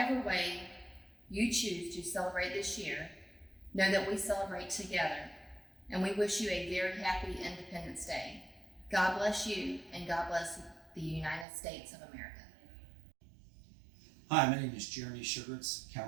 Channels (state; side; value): drops out; left; at 11.5 s